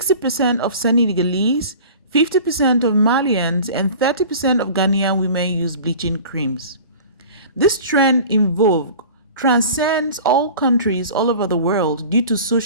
of Senegalese, 50% of Malians, and 30% of Ghanaian women use bleaching creams. This trend in vogue transcends all countries all over the world due to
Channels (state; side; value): inverted; both; correlation -0.41